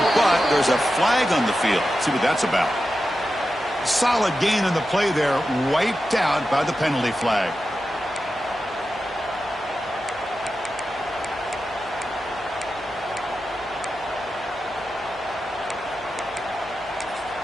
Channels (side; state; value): left; noise; hum, 24 dB below the sound